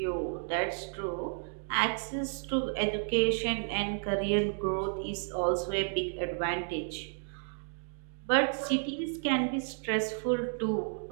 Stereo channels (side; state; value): left; silent; digital silence